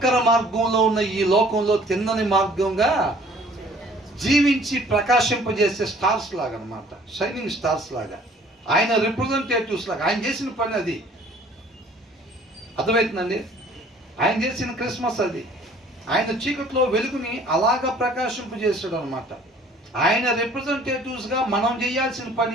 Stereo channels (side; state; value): both; normal; correlation 0.54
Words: మార్గంలో ఉన్న ఈ లోకంలో తిన్నని మార్గంగా జీవించి ప్రకాశింపజేసే స్టార్స్ లాగా అన్నమాట. షైనింగ్ స్టార్స్ లాగా, ఆయన రిప్రజెంటేటివ్స్ లాగా. ఆయన చేసిన పని అది. అర్థమవుతుందండి? ఆయన చేసిన క్రిస్మస్ అది. ఆయన చీకట్లో వెలుగుని అలాగా ప్రకాశింపజేసాడు అనమాట. ఆయన రిప్రజెంటేటివ్స్గా మనం చేయాల్సిన